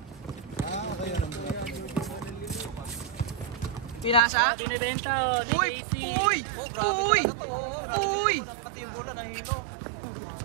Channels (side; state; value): left; drops out; at 4.2 s